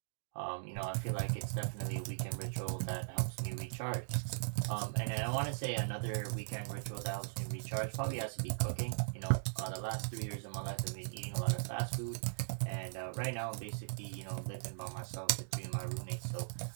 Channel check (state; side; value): silent; left; digital silence